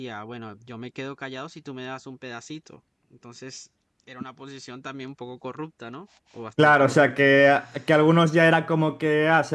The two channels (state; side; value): identical; both; correlation 1.00